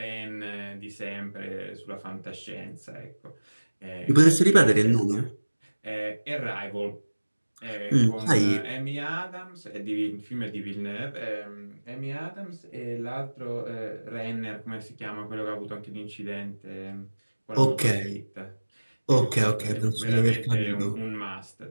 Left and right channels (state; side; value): inverted; both; correlation -1.00